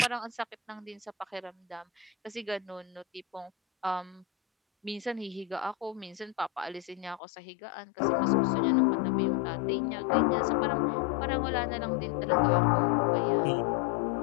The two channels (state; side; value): drops out; right; at 7.2 s